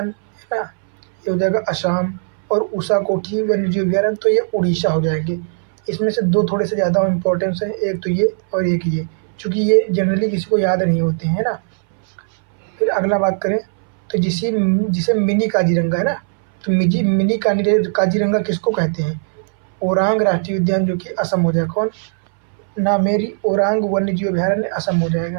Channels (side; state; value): left; silent; 63 dB below the other